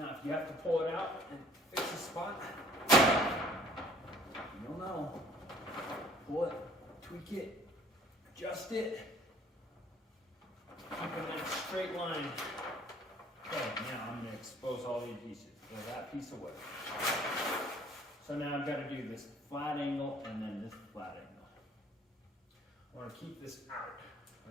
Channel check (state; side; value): normal; both; correlation 0.55